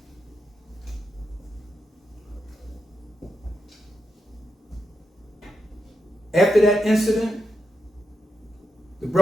After that incident, the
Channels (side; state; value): both; normal; correlation 0.86